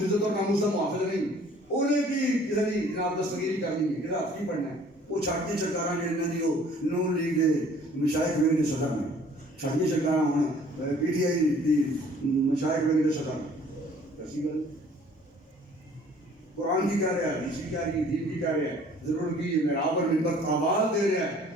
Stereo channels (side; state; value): both; normal; correlation 0.54